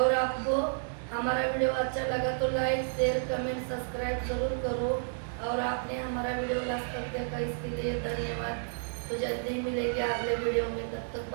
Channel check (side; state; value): left; silent; digital silence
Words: आपको हमारा वीडियो अच्छा लगा तो लाइक, शेयर, कमेंट, सब्सक्राइब जरूर करो। और आपने हमारा वीडियो लास्ट तक देखा इसके लिए धन्यवाद। तो जल्दी मिलेंगे अगले वीडियो में, तब तक